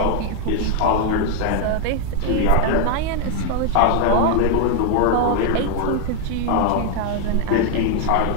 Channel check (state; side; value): different; both; correlation 0.00